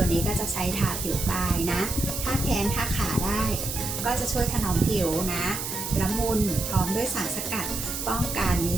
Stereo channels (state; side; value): noise; right; hiss, 4 dB below the sound